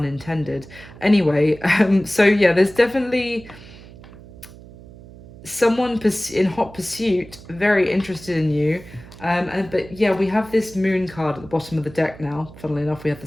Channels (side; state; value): right; noise; hum, 19 dB below the sound